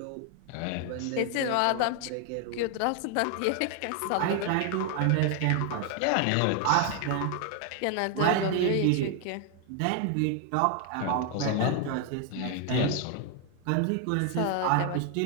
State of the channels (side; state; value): both; different; correlation 0.00